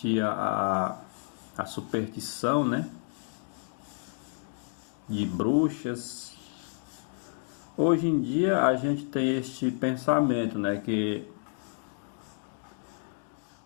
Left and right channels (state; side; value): silent; right; digital silence